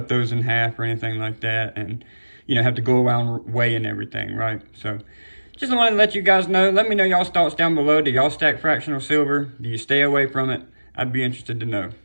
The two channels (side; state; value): both; inverted; correlation -1.00